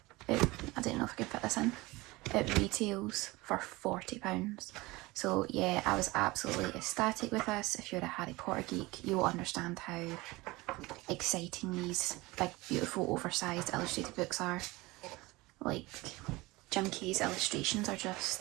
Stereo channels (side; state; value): left; quieter; 21.6 dB